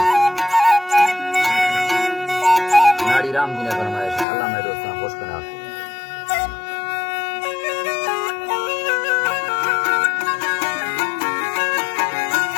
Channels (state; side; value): drops out; right; at 4.2 s